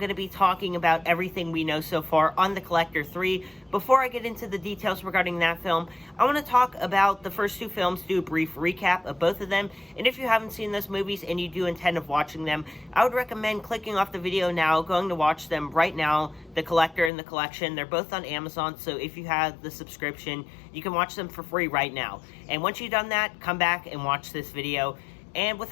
to be talking about everything we know so far on The Collector 3. Before I get into the details regarding that film, I want to talk about the first two films, do a brief recap of both of them. And if you haven't seen those movies and you do intend of watching them, I would recommend clicking off the video now, going to watch them right now, The Collector and The Collection. They're both on Amazon, so if you have the subscription, you can watch them for free right now. And once you've done that, come back and watch this video. And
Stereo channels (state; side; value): drops out; right; at 17.1 s